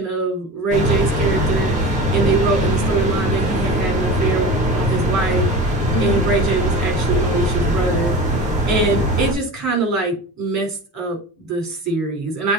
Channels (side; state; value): both; normal; correlation 0.33